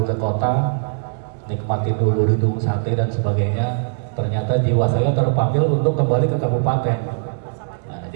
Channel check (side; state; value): left; silent; digital silence